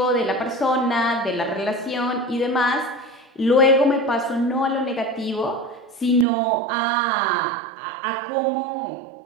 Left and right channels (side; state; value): left; drops out; at 6.2 s